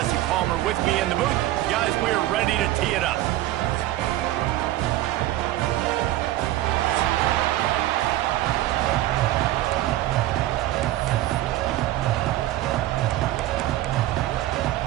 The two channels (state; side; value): quieter; left; 15.1 dB